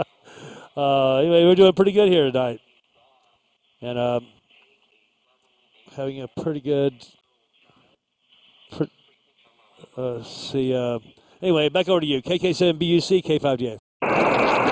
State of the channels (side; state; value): both; identical; correlation 1.00